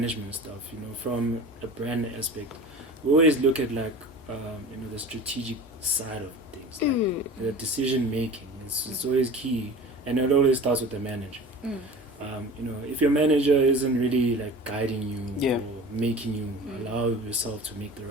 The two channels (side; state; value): both; normal; correlation 0.38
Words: stuff, you know, from a brand aspect, we always look at, like, you know, the strategic side of things, like the decision making. It's always key, and it always starts with the manager. You know, if your manager isn't really like guiding you or making you allow yourself to make the